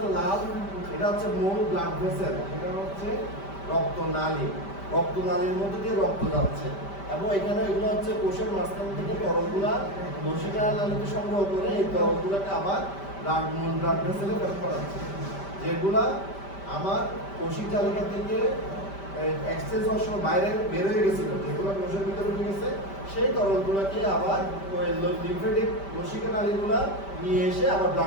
লাল, এটা হচ্ছে মূল ব্লাড ভেসেল, এটা হচ্ছে রক্তনালী। রক্তনালীর মধ্যে দিয়ে রক্ত যাচ্ছে এবং এখানে এগুলো হচ্ছে কোষের মাঝখান থেকে তরলগুলা লসিকা নালীতে সংগ্রহ করে এই তরলগুলোকে আবার মূল ব্লাড ভেসেলে ব্যবহার করা হচ্ছে, যেগুলা আমার কোষিক তালিকা থেকে এক্সচেঞ্জ হওয়ার সময় বাইরে বের হয়ে গেছিল, যেগুলো কোষের ভিতরে ঢুকে গেছে সেই তরলগুলোকে আবার ওই লিম্ফেটিক লসিকা নালীগুলা নিয়ে এসে আবার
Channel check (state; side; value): late; right; 5.1 ms